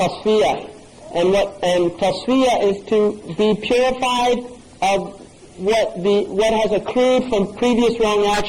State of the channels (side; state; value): both; identical; correlation 1.00